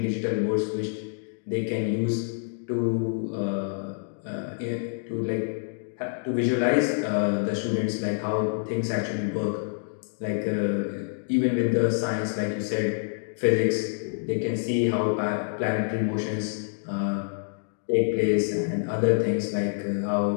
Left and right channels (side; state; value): right; silent; digital silence